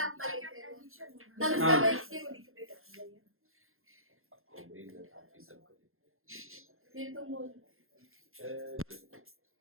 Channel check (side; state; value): left; late; 0.61 ms